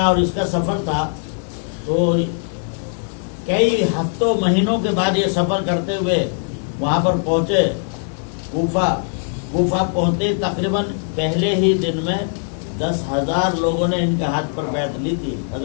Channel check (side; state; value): right; silent; 58 dB below the other